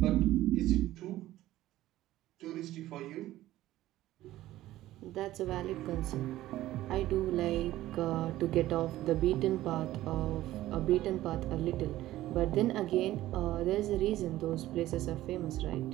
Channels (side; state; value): left; quieter; 15.1 dB